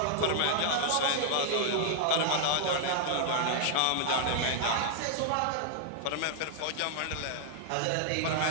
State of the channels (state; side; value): different; both; correlation -0.01